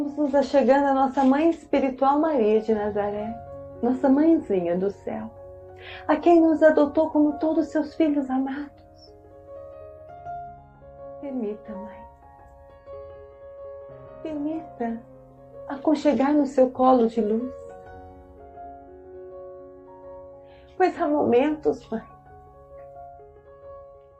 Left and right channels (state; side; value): identical; both; correlation 1.00